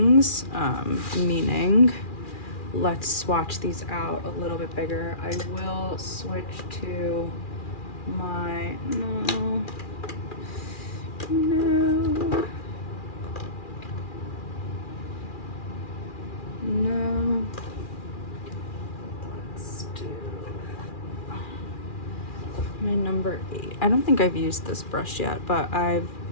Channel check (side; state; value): right; late; 2.4 ms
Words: meaning let's swatch these out a little bit bigger. I will switch to my, no, let's do my number 8. I don't think I've used this brush yet, but I've